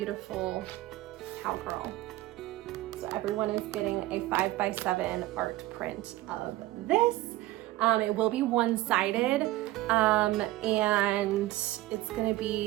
cowgirl. So everyone is getting a 5x7 art print of this. It will be one-sided, and it's gonna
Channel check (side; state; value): left; quieter; 17.1 dB